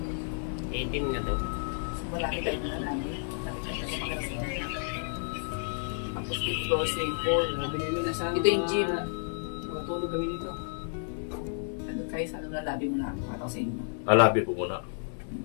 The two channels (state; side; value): silent; right; digital silence